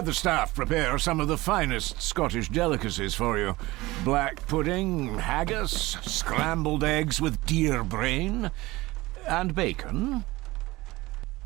the staff prepare some of the finest Scottish delicacies for you. Black pudding, haggis, scrambled eggs with deer brain, and bacon.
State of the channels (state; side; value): quieter; left; 20.0 dB